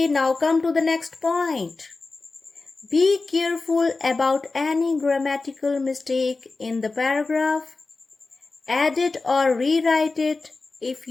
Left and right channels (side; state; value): right; quieter; 3.7 dB